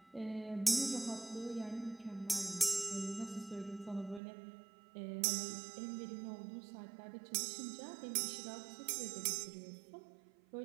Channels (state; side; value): drops out; left; at 4.2 s